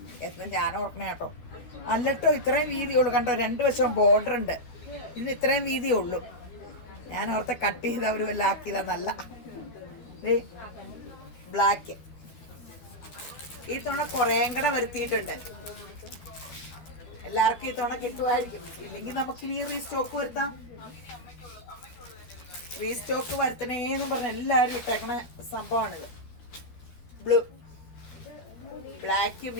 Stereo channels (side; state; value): right; late; 13 ms